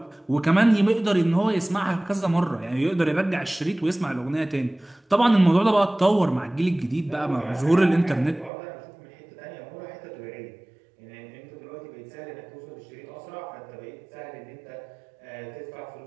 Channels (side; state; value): left; drops out; at 8.5 s